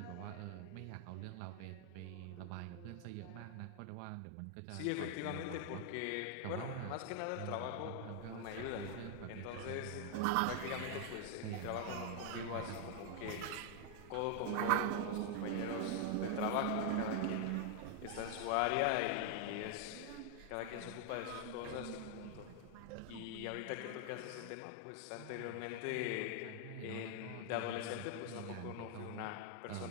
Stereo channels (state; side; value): different; both; correlation 0.00